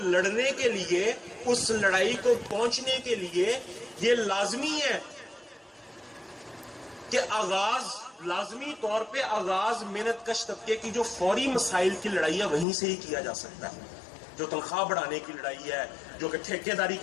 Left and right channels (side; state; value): right; drops out; at 12.7 s